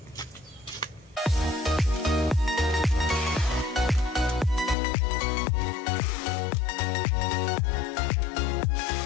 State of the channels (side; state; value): right; drops out; at 4.8 s